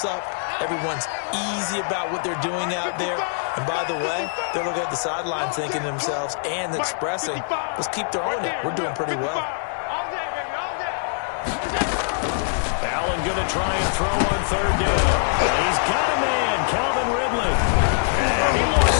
up. Everyone's easy about what they're doing out there. And by the way, they're looking at the sideline thinking to themselves and expressing, let's keep throwing it. We're doing pretty well. Allen going to try and throw on 3rd down. He's got a man, Calvin Ridley. And he lost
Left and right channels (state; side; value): silent; right; digital silence